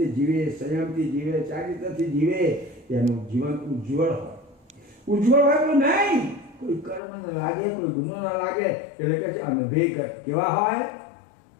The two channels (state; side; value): drops out; right; at 7.0 s